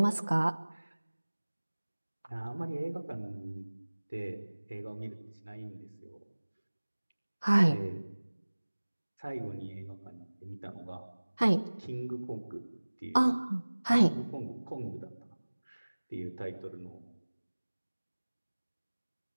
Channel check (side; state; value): both; inverted; correlation -1.00